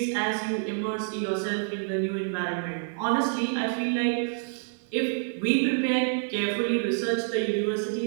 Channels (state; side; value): silent; left; 60 dB below the other